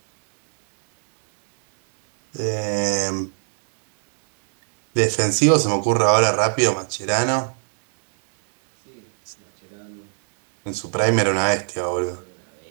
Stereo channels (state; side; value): silent; left; 64 dB below the other